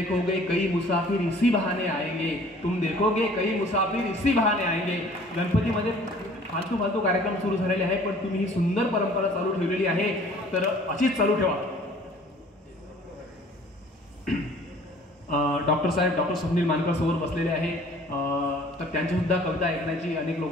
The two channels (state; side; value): normal; both; correlation 0.52